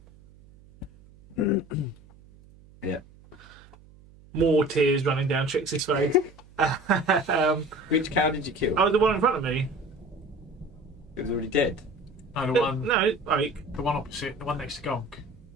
Yeah. More tears running down Trixie's face. Which cow did you kill? Oh, the one in front of me. It was already dead. No, the one, No, like the one opposite, the one next to Gonk.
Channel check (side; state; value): right; noise; hum, 24 dB below the sound